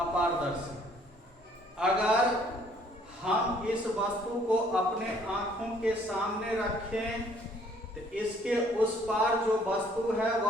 अगर हम इस वस्तु को अपने आंखों के सामने रखें तो इसके उस पार जो वस्तु है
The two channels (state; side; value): normal; both; correlation 0.61